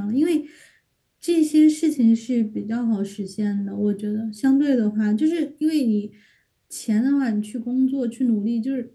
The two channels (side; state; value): both; identical; correlation 1.00